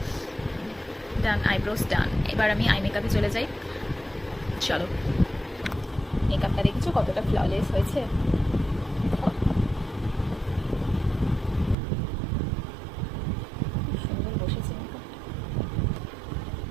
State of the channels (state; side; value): drops out; left; at 11.8 s